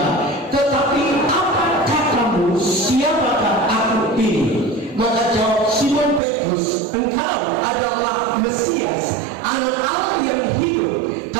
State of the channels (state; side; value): drops out; left; at 6.2 s